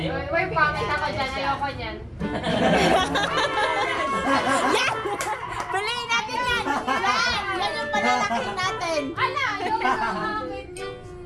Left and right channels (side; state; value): both; identical; correlation 1.00